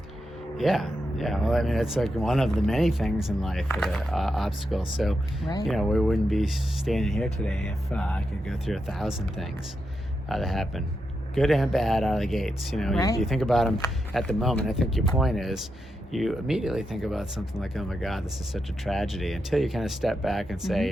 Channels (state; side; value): normal; both; correlation 0.86